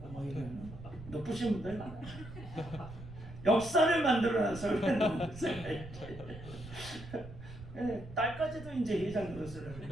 막 이러면 높으신 분들 많아요. 역사를 만들어놔서 딸까지도 이제 회장 노릇을.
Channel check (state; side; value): noise; right; rumble, 14 dB below the sound